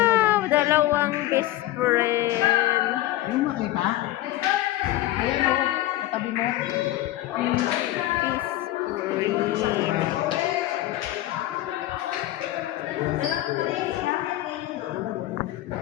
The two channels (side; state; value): right; quieter; 15.5 dB